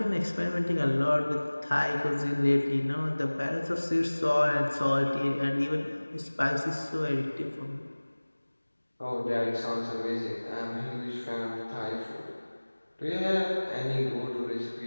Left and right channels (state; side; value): inverted; both; correlation -1.00